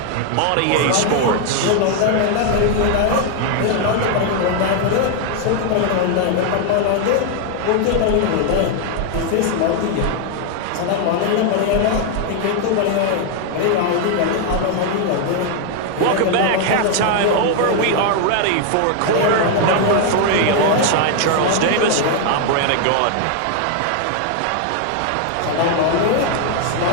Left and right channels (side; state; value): both; different; correlation 0.00